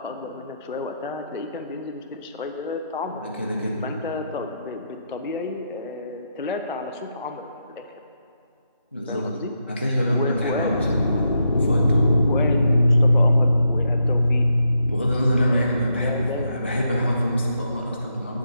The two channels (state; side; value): inverted; both; correlation -0.81